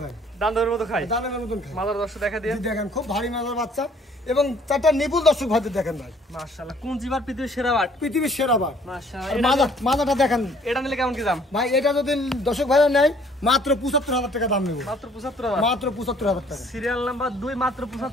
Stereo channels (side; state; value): both; normal; correlation 0.59